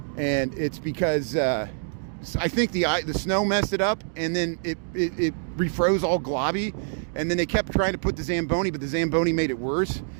and it's because I think the snow messed it up, and then it refroze all globby, and then they kept trying to put the Zamboni, but the Zamboni made it worse.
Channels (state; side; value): silent; left; digital silence